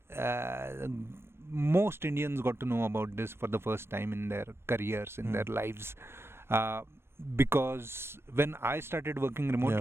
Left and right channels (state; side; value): late; left; 0.12 ms